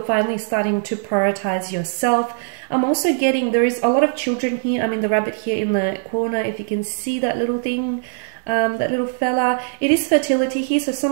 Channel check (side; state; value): left; silent; digital silence